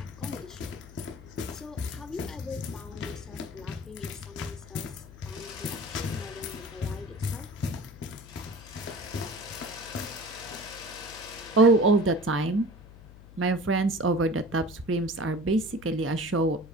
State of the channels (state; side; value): noise; left; hum, 18 dB below the sound